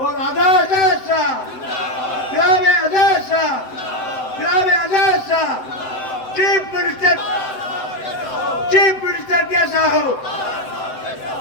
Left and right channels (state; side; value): late; right; 7.8 ms